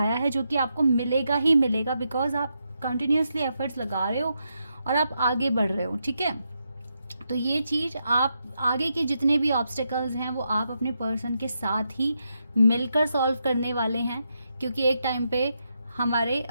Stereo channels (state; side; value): inverted; both; correlation -0.83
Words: है, जो कि आपको मिलेगा ही मिलेगा, बिकॉज आप कंटिन्यूसली एफर्ट्स लगा रहे हो और आप आगे बढ़ रहे हो, ठीक है। तो ये चीज़ आप आगे के जितने भी ऑब्स्टिकल्स हैं वो आप अपने पर्सन के साथ ही मिलकर सॉल्व करने वाले हैं, क्योंकि एक टाइम पे हमारे